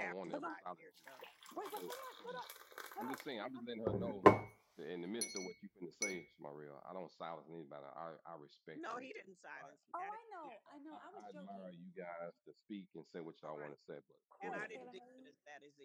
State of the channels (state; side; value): identical; both; correlation 1.00